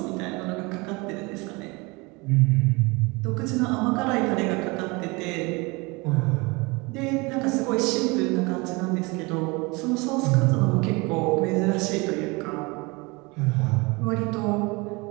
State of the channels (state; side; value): quieter; left; 26.2 dB